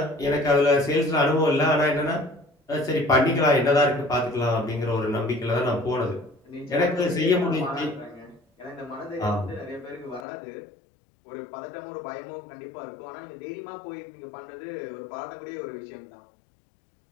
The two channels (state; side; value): drops out; right; at 10.2 s